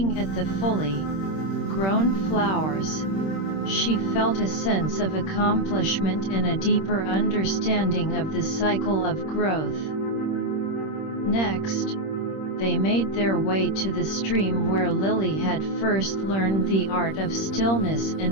at the fully grown flowers, she felt a sense of accomplishment and a deeper understanding of the cycle of growth. Next, they made their way to the stream where Lily had first learned the art of stillness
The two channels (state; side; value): late; right; 26 ms